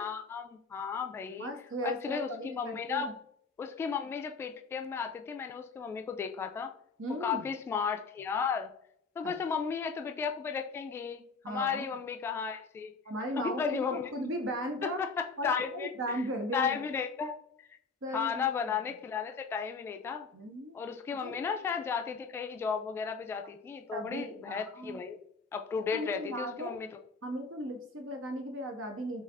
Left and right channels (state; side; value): quieter; right; 4.3 dB